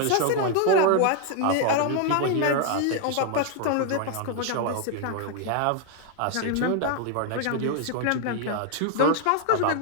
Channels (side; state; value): both; different; correlation 0.00